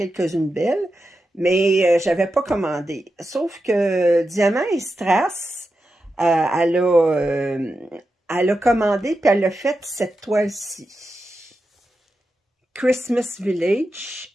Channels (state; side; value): normal; both; correlation 0.90